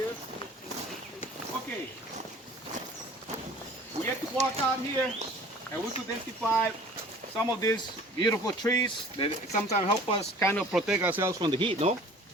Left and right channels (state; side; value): normal; both; correlation 0.48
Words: Okay. We get to walk out here and we could identify some of these beautiful trees that sometimes help us kind of protect ourselves from the heat, no?